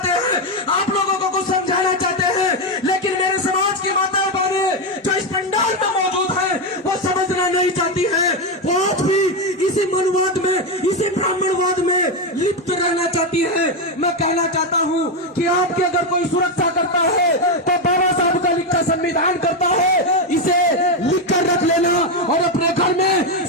हैं, आप लोगों को कुछ समझाना चाहते हैं। लेकिन मेरे समाज की माताएं बहनें जो इस पंडाल में मौजूद हैं, वो समझना नहीं चाहती है, वो आज भी इसी मनुवाद में, इसी ब्राह्मणवाद में लिप्त रहना चाहती है। मैं कहना चाहता हूँ कि आपकी अगर कोई सुरक्षा करता है तो बाबा साहब का लिखा संविधान करता है, इसे लिख कर रख लेना और अपने घर में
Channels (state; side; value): normal; both; correlation 0.08